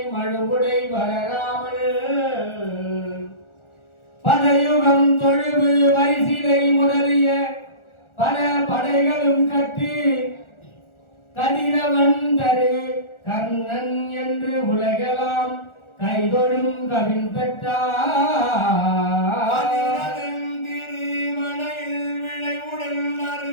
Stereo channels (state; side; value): late; right; 1.4 ms